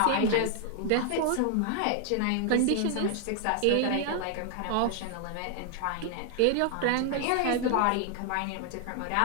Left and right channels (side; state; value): both; different; correlation 0.00